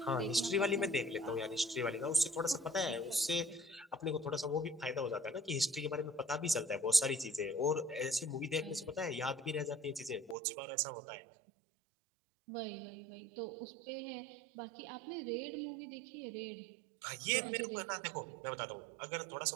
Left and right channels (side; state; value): left; drops out; at 10.4 s